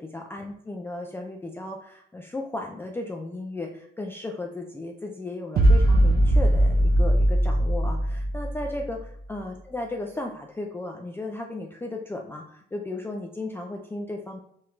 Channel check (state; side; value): normal; both; correlation 0.89